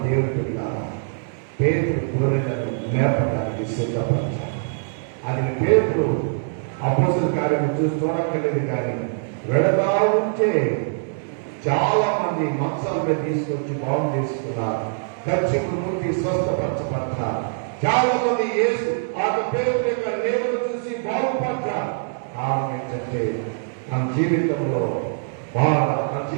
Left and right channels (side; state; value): left; silent; digital silence